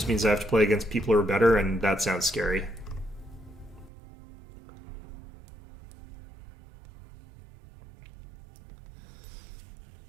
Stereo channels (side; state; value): left; drops out; at 3.9 s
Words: means I have to play against people who are better, and that sounds scary.